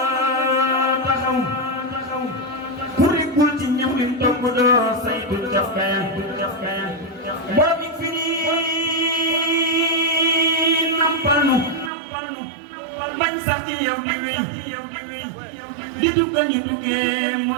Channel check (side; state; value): left; drops out; at 11.9 s